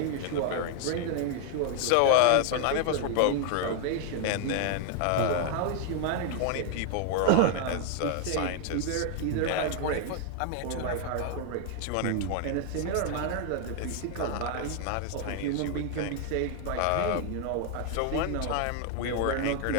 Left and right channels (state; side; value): different; both; correlation 0.00